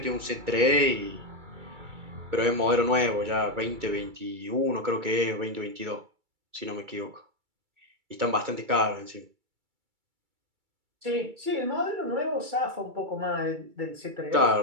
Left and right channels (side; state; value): left; late; 2.3 ms